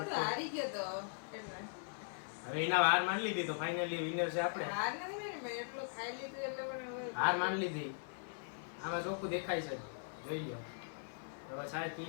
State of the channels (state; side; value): silent; right; 51 dB below the other